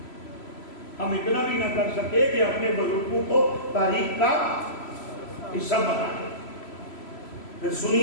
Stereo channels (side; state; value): right; late; 3.0 ms